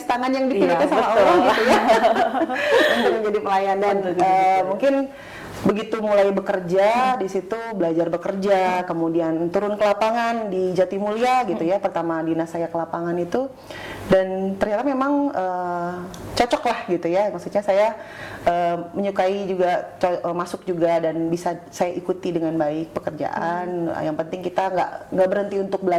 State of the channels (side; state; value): both; identical; correlation 1.00